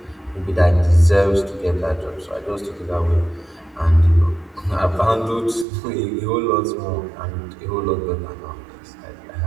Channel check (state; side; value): drops out; left; at 5.7 s